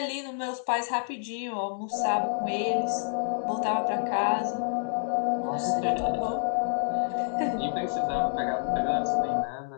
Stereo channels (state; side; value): silent; right; 59 dB below the other